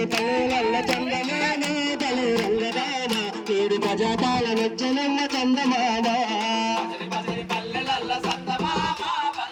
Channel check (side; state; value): both; identical; correlation 1.00